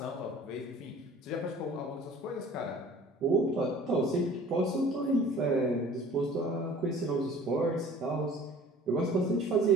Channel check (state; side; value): normal; both; correlation 0.49